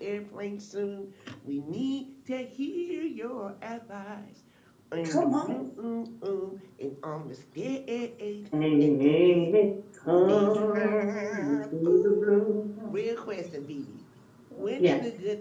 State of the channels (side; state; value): both; identical; correlation 1.00